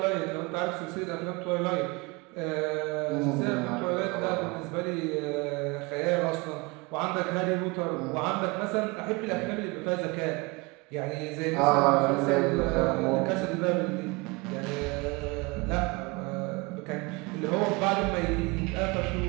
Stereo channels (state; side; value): quieter; left; 26.5 dB